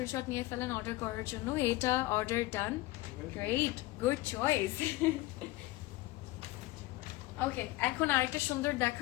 নিয়ে ফেলেন অর্ডার করার জন্য। এটা order done. Great, good choice. Okay, এখন আরেকটা সুন্দর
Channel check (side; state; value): right; quieter; 18.8 dB